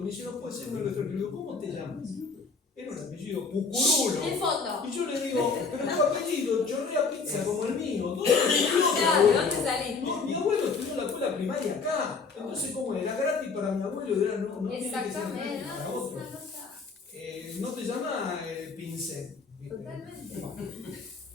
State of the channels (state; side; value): quieter; right; 4.7 dB